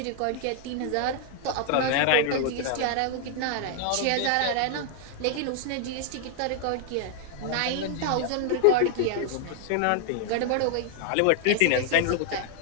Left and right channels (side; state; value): both; different; correlation 0.00